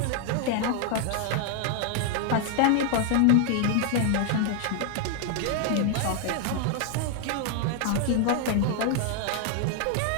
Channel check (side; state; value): both; different; correlation 0.00